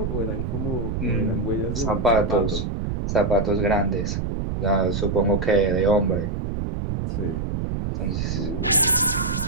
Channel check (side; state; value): right; noise; rumble, 2 dB below the sound